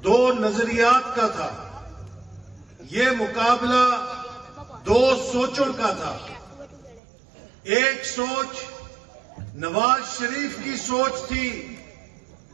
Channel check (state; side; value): drops out; left; at 7.0 s